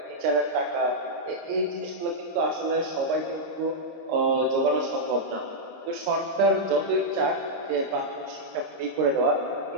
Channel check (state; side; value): late; left; 26 ms